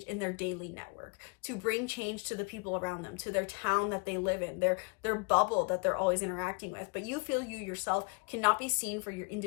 in their daily network, to bring change to the people around them, to their town that they live in, their bubble that they're always interacting with. But you feel you yourself cannot be seen for your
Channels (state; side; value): quieter; right; 33.5 dB